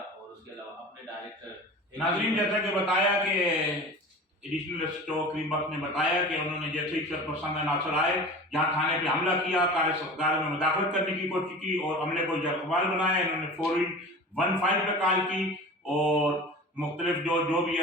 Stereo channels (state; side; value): normal; both; correlation 0.36